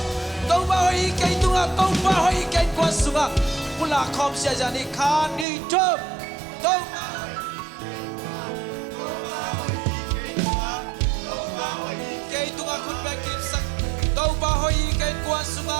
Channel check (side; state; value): left; drops out; at 5.5 s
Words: Tàu bay cái tunga tàu bay cái quan sunga, pula khom sia jani khan đi chớp, tàu cái tunga khut bay kim sak, tàu bay cái quan